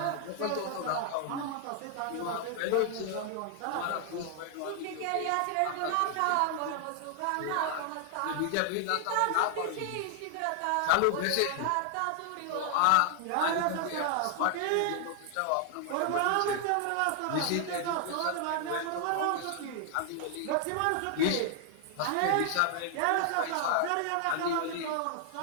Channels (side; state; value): both; different; correlation 0.00